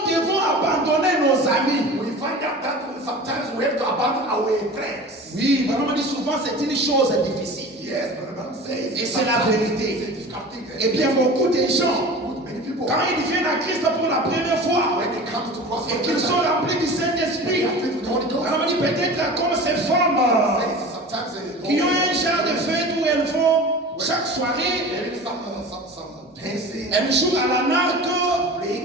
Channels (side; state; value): both; normal; correlation 0.36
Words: devons abandonner nos amis. we find out that sometimes we have to abandon our friends. Oui, Branham dit souvent c'est une chose difficile. Yes, but the Bible says Et c'est la vérité. it's a difficult thing. Et bien beaucoup de gens, With many people, quand ils viennent à Christ pour la première fois when they come to cross et qu'ils sont remplis du Saint-Esprit, Branham dit peut-être comme ces femmes sometimes they qui ont un genre de fête où elles vont chaque soirée, there is some dancing, elles jouent à la narque,